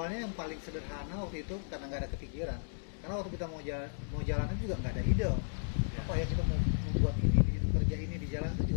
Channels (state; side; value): silent; right; digital silence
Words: yang paling sederhana waktu itu karena nggak ada kepikiran. Karena waktu kita mau jalan itu juga nggak ada ide. Apa ya kita mau membuat ini, kerja ini di jalan itu